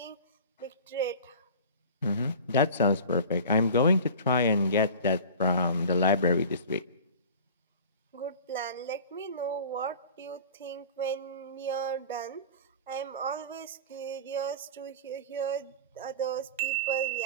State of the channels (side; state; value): both; inverted; correlation -0.38